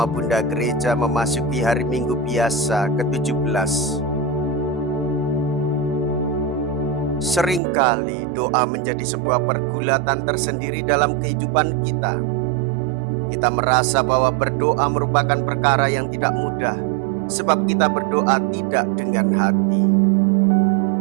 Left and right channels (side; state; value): left; drops out; at 7.6 s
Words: Bunda Gereja memasuki hari Minggu biasa ke-17. Seringkali doa menjadi sebuah pergulatan tersendiri dalam kehidupan kita. Kita merasa bahwa berdoa merupakan perkara yang tidak mudah, sebab kita berdoa tidak dengan hati.